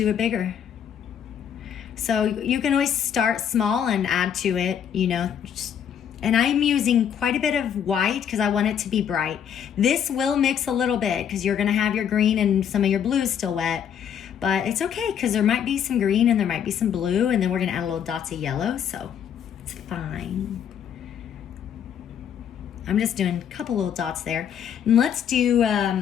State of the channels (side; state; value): right; quieter; 8.6 dB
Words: it bigger. So you can always start small and add to it, you know. And I'm using quite a bit of white because I want it to be bright. This will mix a little bit because you're gonna have your green and some of your blue still wet. But it's okay because there might be some green and there might be some blue, and then we're gonna add a little dots of yellow, so it's fine. I'm just doing a couple little dots there. And let's do